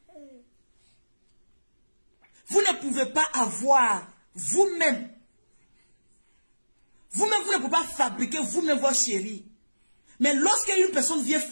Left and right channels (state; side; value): inverted; both; correlation -1.00